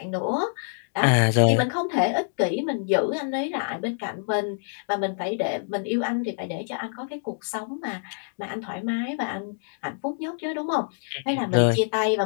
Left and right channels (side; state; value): right; silent; digital silence